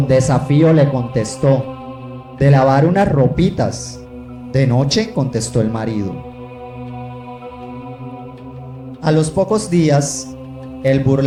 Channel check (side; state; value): both; identical; correlation 1.00